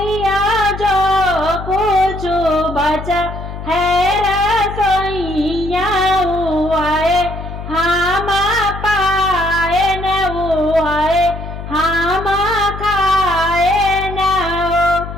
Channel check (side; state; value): left; noise; hum, 9 dB below the sound